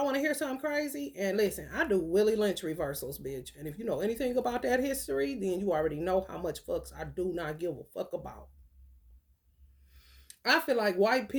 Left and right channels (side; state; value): both; identical; correlation 1.00